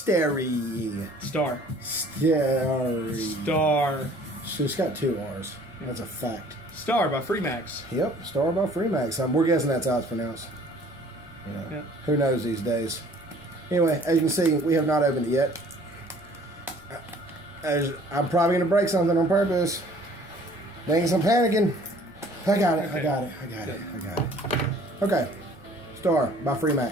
STARRE. STARRE. STARRE. So it's got 2 R's. That's a fact. STARRE by Freemax. Yep, STARRE by Freemax. We're guessing that's how it's pronounced. Yeah. Who knows these days? Anyway, as you can see, we have not opened it yet. I'm probably going to break something on purpose. Thanks, I'm panicking. I got it. Okay. I got it. I got it. I got it. Okay. STARRE by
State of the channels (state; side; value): normal; both; correlation 0.54